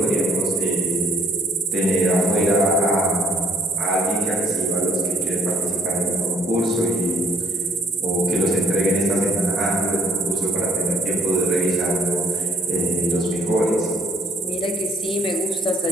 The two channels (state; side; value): normal; both; correlation 0.63